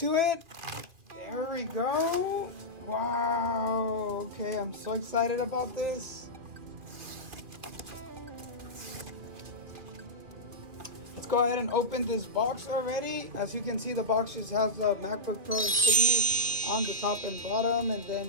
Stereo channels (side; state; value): left; late; 2.4 ms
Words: it. There we go. Wow. Okay, I'm so excited about this. Let's go ahead and open this box already. As you can see, the box just has the MacBook Pro insignia on the top and bottom, and